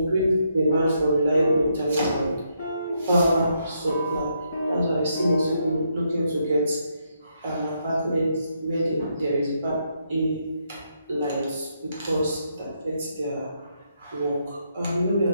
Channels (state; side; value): inverted; both; correlation -0.77